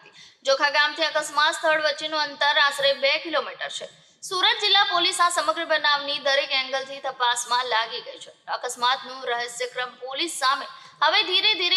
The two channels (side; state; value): both; identical; correlation 1.00